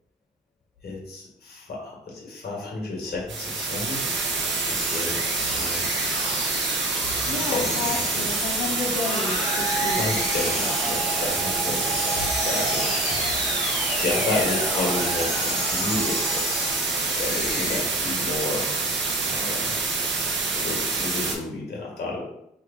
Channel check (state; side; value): normal; both; correlation 0.33